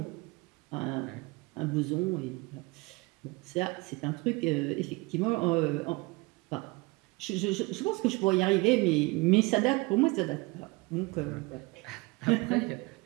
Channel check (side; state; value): left; quieter; 24.9 dB